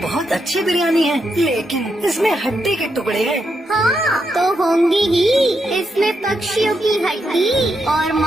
अच्छी बिरयानी है, लेकिन इसमें हड्डी के टुकड़े हैं। हाँ तो होंगी ही, इसमें पक्षियों की हड्डी और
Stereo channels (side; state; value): both; normal; correlation 0.82